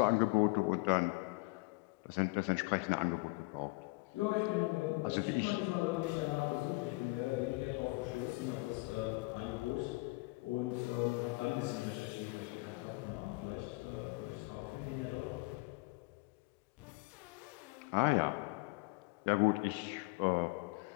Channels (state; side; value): quieter; right; 26.1 dB